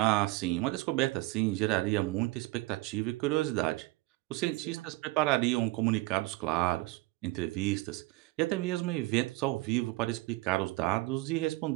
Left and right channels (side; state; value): left; quieter; 20.9 dB